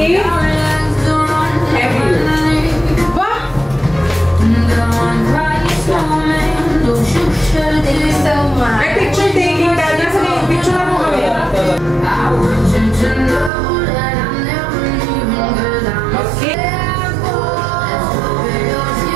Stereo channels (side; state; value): left; drops out; at 13.5 s